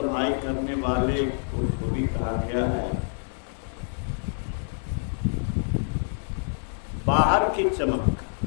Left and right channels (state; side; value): silent; right; digital silence